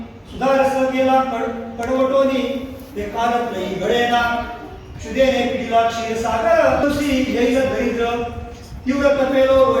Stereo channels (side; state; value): both; identical; correlation 1.00